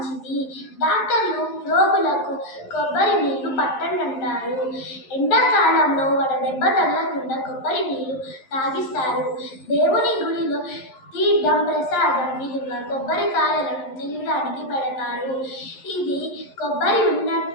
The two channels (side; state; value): right; late; 11 ms